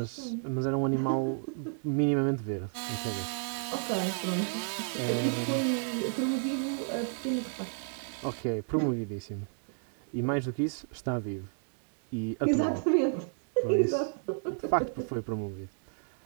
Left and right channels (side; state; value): left; silent; digital silence